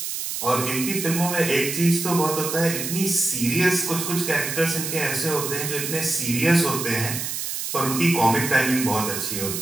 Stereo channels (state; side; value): noise; right; hiss, 4 dB below the sound